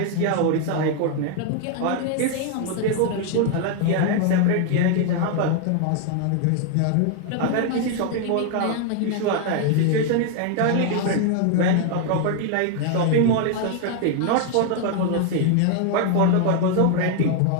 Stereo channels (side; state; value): both; different; correlation 0.00